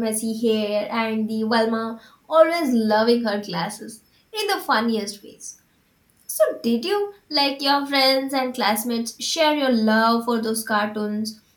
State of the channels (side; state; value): both; identical; correlation 1.00